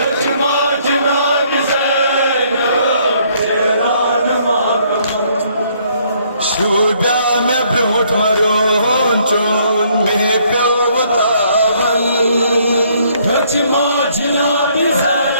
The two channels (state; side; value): inverted; both; correlation -0.66